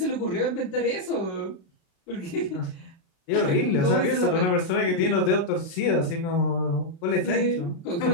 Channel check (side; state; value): right; late; 35 ms